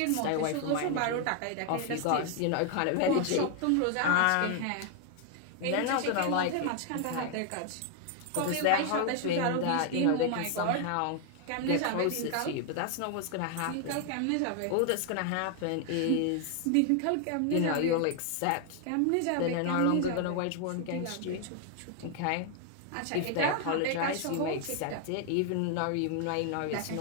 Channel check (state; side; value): different; both; correlation 0.00